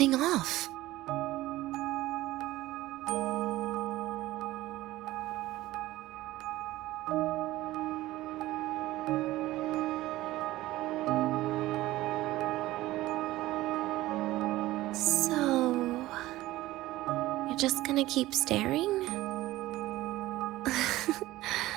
off. Just gonna keep staring?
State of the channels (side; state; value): left; quieter; 16.8 dB